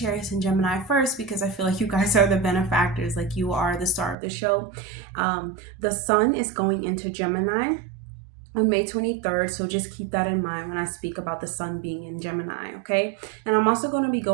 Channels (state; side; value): drops out; left; at 4.2 s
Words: and Gemini first because I feel like you guys are the benefactors, like you are the star of the show. The sun is going into Gemini on May 23rd, so just keep that in mind when I speak about the sun being in Gemini, okay? And I'm also going to be